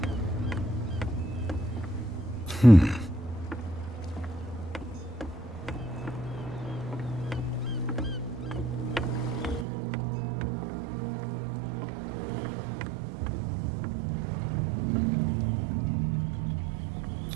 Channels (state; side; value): drops out; left; at 9.7 s